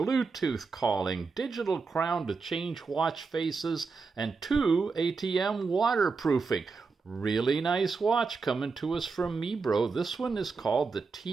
calling, digital crown to change watch faces, and 2 ATM waterproofing. Really nice watch coming to us from MIBRO. This one is called the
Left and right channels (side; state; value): left; quieter; 4.6 dB